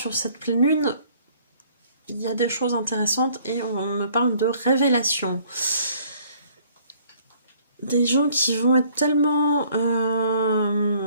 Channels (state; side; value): inverted; both; correlation -0.59